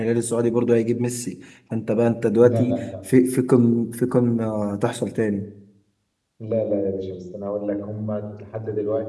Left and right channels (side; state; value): both; identical; correlation 1.00